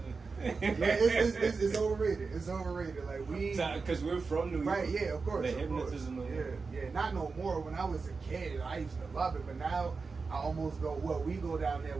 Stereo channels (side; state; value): left; quieter; 4.5 dB